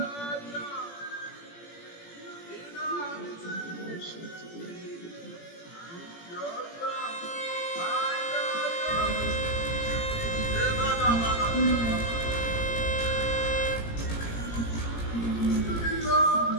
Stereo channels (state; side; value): late; right; 17 ms